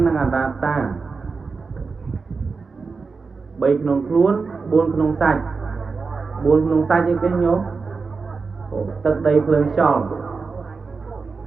និងអនត្តា3ក្នុងខ្លួន4ក្នុងសាច់អីគេញោមទឹកដីភ្លើងខ្យល់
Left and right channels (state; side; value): quieter; left; 4.6 dB